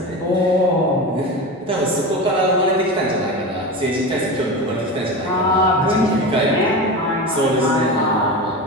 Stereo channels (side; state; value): both; normal; correlation 0.25